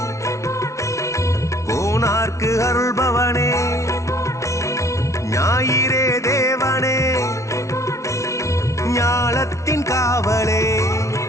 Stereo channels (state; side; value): late; right; 0.14 ms